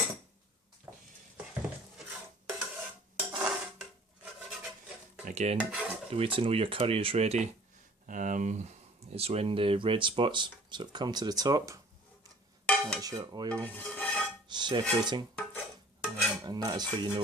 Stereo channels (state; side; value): normal; both; correlation 0.51